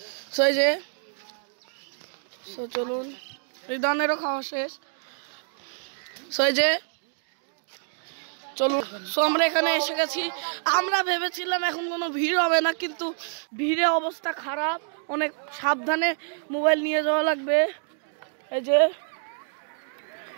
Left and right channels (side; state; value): left; silent; digital silence